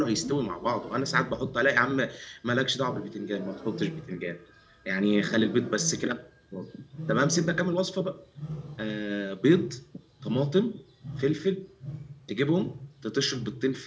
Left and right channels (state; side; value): identical; both; correlation 1.00